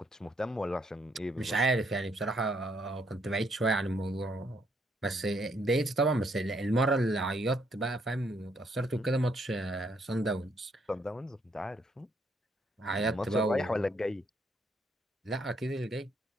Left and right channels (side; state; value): both; normal; correlation 0.72